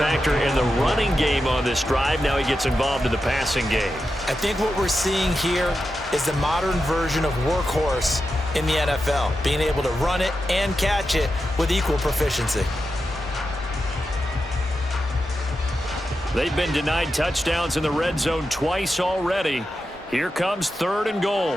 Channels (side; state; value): both; normal; correlation 0.89